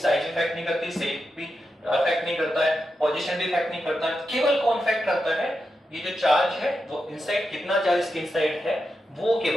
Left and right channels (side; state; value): both; normal; correlation 0.88